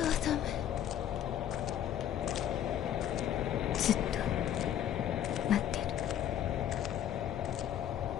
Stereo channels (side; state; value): right; quieter; 10.5 dB